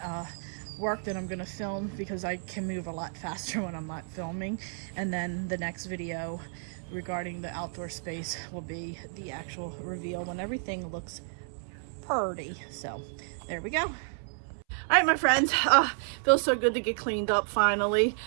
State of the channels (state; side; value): silent; left; 57 dB below the other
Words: work that I'm going to film, because I can move a lot faster when I'm not filming. And then the next video regarding the outdoor space will be the actual reveal when everything looks pretty. So there we go. All right, my friends, feels so good to get cleaned up finally.